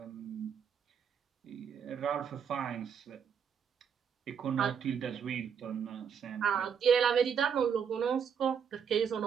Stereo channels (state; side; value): quieter; left; 7.3 dB